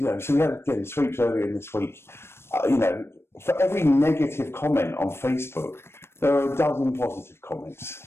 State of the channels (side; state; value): right; late; 0.12 ms